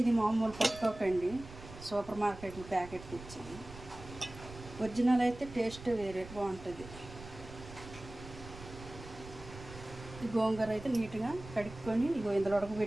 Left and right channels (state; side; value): noise; right; rumble, 15 dB below the sound